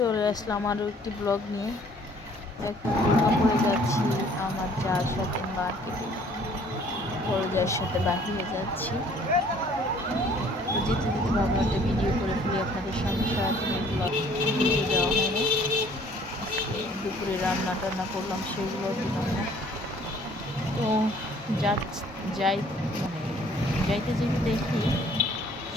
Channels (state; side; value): normal; both; correlation 0.57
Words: আসলাম আরও একটি ব্লগ নিয়ে। এখন দুর্গাপুরে যাচ্ছি আমার যার সাথে মার্কেটে, বড় যার সাথে বাহিরে যাচ্ছি। তো যেতে যেতে ভাবলাম একটা ভিডিও করে ফেলি আপনাদের সামনে। সারাদিনের ব্লগ ভিডিও দেওয়া হয়নি, আজকে দুপুরে রান্না টান্না করলাম সেগুলো দিলাম না। তো যাই মানে যাইতে যেতে দেখি